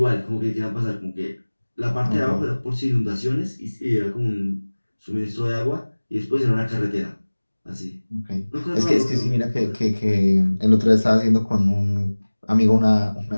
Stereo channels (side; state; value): both; inverted; correlation -1.00